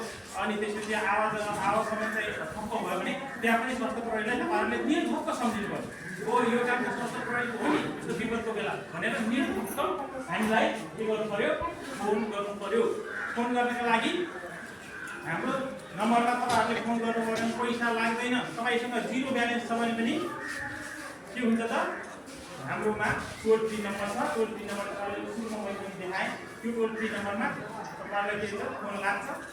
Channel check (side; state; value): both; identical; correlation 1.00